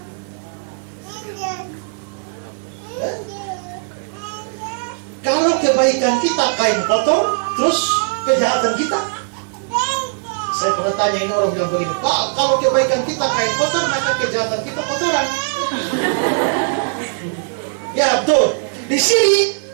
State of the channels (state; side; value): silent; left; digital silence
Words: Kalau kebaikan kita kain kotor, terus kejahatan kita. Saya pernah tanya ini orang bilang begini, Pak, kalau kebaikan kita kain kotor, maka kejahatan kita kotoran. Ya betul. Di sini